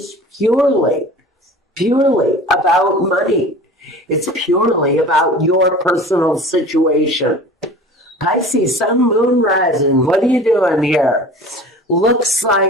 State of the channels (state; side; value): normal; both; correlation 0.41